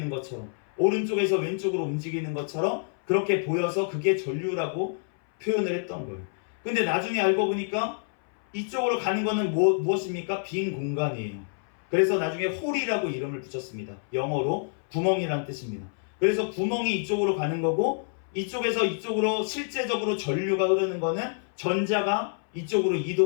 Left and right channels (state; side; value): silent; right; 59 dB below the other